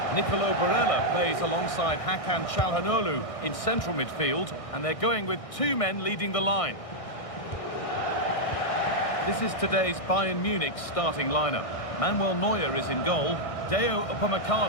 Nicolo Barella plays alongside Hakan Çalhanoğlu in central midfield. And they're going with 2 men leading the line. This is today's Bayern Munich starting lineup. Manuel Neuer is in goal. Deo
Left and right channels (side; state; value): right; late; 1.6 ms